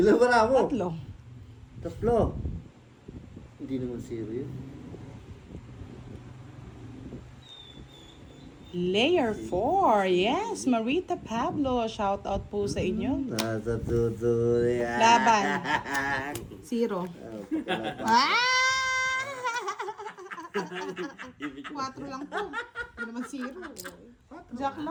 ba na ako? 3. 3. Hindi naman 0 yun. Layer 4. Yes, Marita Pablo. Shout out po sa inyo. Nasa tuto yan. Laban. 0. Ah! 4 lang po. Hindi naman 0. Jack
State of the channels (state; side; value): identical; both; correlation 1.00